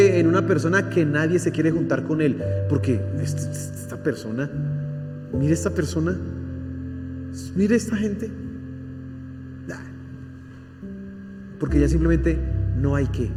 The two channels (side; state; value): both; identical; correlation 1.00